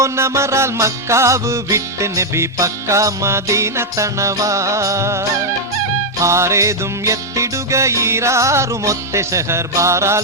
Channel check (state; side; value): normal; both; correlation -0.01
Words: മക്കാവ് വിട്ട് നബി പക്ക മദീന തണവാ ആരേതും എത്തിടുക ഈരാറുമൊത്തെ ഷഹർ